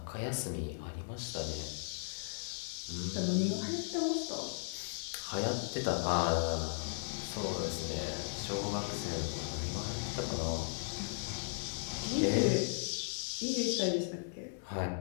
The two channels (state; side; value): silent; right; digital silence